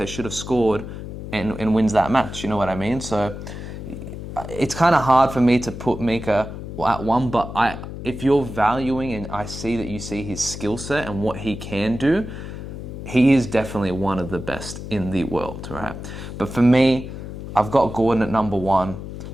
should have scored and wins that match, you know what I mean? So it's kind of hard for me to put Mika at one, but if you're valuing and I see that you see his skill set and what he can do, he is definitely one of the best in the world, right? But for me, I've got Gordon at number one.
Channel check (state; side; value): noise; left; hum, 9 dB below the sound